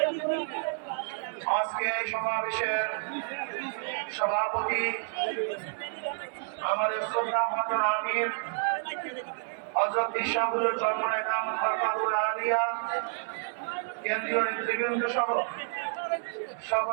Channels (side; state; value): left; silent; 58 dB below the other